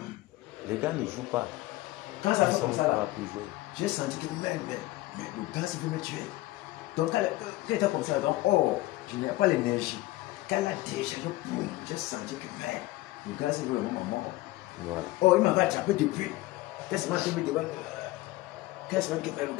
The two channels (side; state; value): right; quieter; 18.4 dB